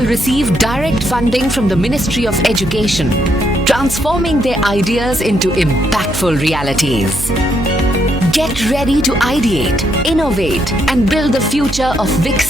receive direct funding from the Ministry of Education, transforming their ideas into impactful realities. Get ready to ideate, innovate and build the future of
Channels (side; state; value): right; noise; hum, 9 dB below the sound